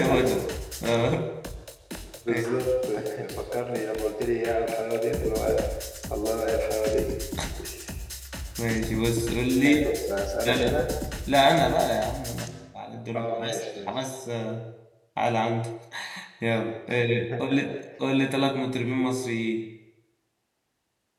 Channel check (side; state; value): both; identical; correlation 1.00